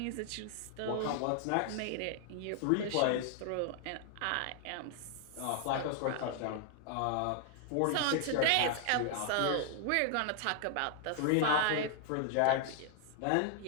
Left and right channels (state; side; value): different; both; correlation 0.00